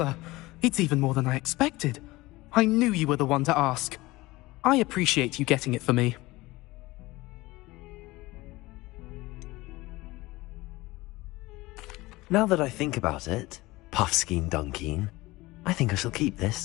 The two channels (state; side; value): quieter; right; 20.3 dB